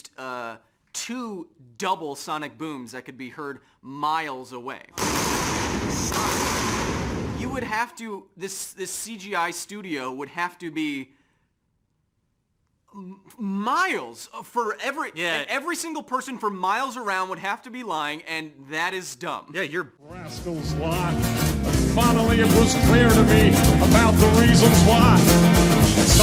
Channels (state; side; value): identical; both; correlation 1.00